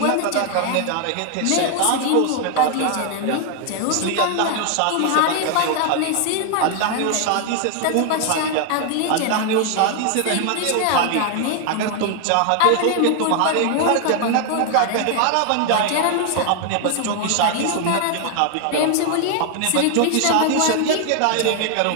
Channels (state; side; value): different; both; correlation 0.00